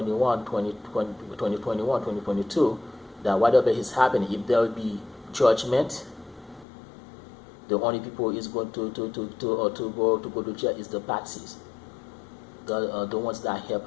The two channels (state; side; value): drops out; right; at 6.7 s